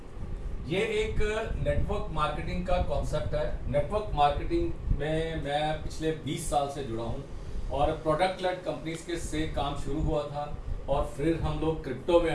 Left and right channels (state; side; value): identical; both; correlation 1.00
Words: ये एक नेटवर्क मार्केटिंग का कॉन्सेप्ट है। नेटवर्क मार्केटिंग में मैं पिछले 20 साल से जुड़ा हूं और प्रोडक्ट लेड कंपनीज के से काम शुरू हुआ था और फिर हम लोग क्रिप्टो में